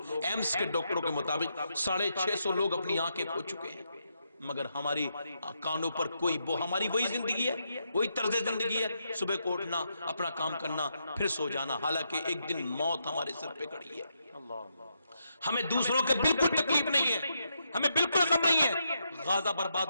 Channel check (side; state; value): both; inverted; correlation -0.81